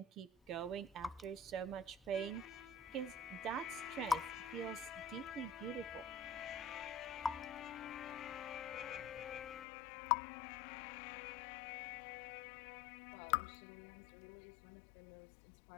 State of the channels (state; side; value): drops out; right; at 9.7 s